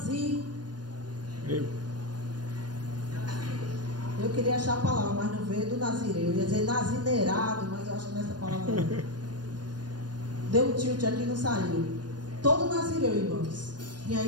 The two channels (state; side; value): late; left; 0.69 ms